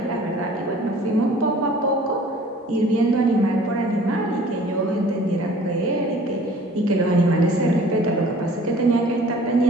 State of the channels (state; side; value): normal; both; correlation 0.50